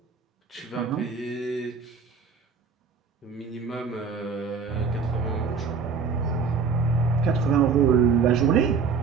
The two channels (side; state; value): left; quieter; 5.4 dB